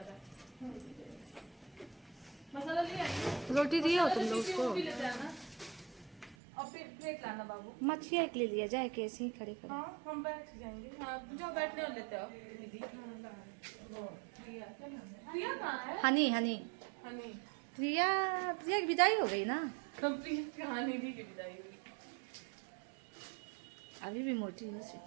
मसाला लिया रोटी दिए हो तुम लोग उसको? वो भी लेते हैं ना। और प्लेट लाना बाबू। मच्छी एक ले लिया जाए, कैसे ही खड़े खड़े। हाँ हम बैठ जाएंगे। हाँ जाओ बैठने और लेते हो दीदी। प्रिया कहाँ है? हनी हनी हनी प्रिया, प्रिया की विदाई हो गई ना? कंप्लीट कहानी थी की विदाई हुई। अभी भी मोटी हो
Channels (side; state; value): left; drops out; at 6.4 s